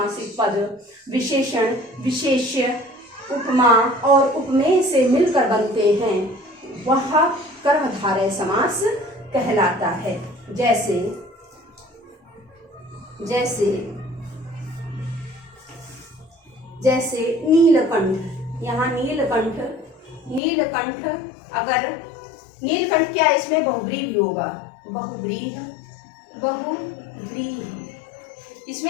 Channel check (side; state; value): right; drops out; at 20.4 s